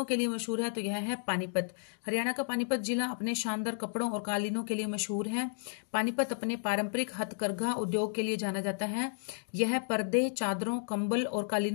मशहूर है? तो यह है पानीपत। हरियाणा का पानीपत जिला अपने शानदार कपड़ों और कालीनों के लिए मशहूर है। पानीपत अपने पारंपरिक हथकरघा उद्योग के लिए जाना जाता है। यह पर्दे, चादरों, कंबल और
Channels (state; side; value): silent; right; digital silence